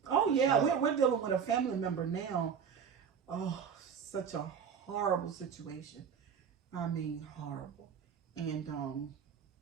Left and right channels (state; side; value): quieter; left; 7.1 dB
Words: We're dealing with a family member now. Oh, such a horrible situation. I mean, horrible. And